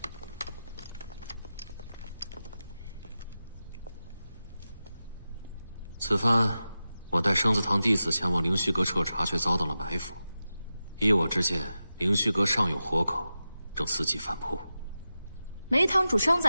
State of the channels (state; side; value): inverted; both; correlation -0.93